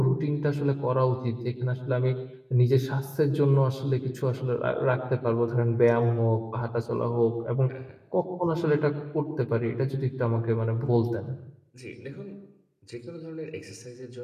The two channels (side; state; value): both; identical; correlation 1.00